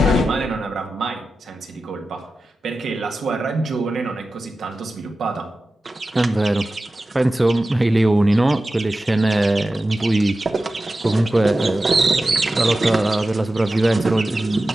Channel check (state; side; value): normal; both; correlation 0.94